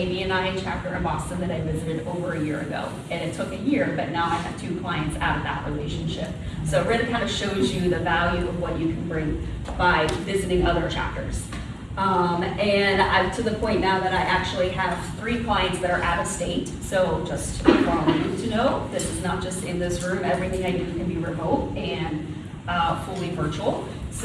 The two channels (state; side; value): identical; both; correlation 1.00